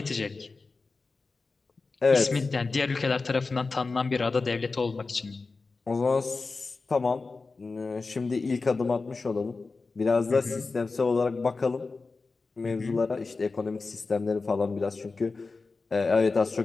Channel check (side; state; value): right; quieter; 4.0 dB